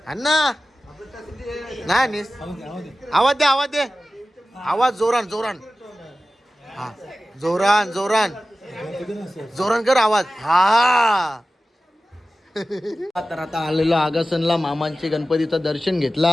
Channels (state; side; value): normal; both; correlation 0.95